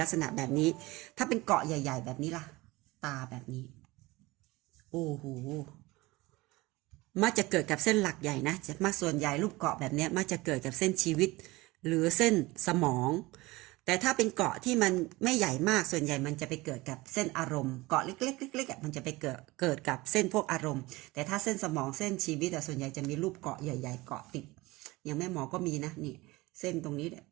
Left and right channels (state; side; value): quieter; left; 21.2 dB